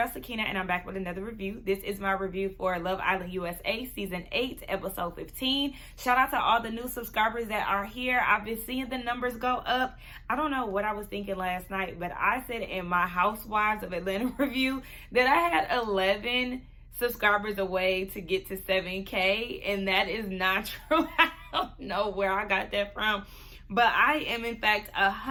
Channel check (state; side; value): identical; both; correlation 1.00